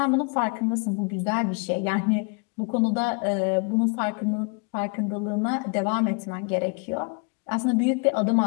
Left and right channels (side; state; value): right; quieter; 34.5 dB